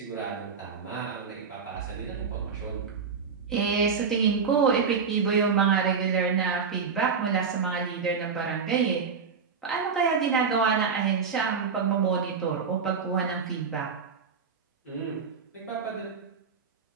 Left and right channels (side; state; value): left; quieter; 5.8 dB